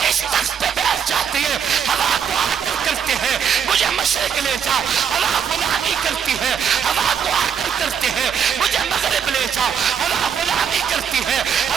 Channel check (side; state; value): left; quieter; 7.6 dB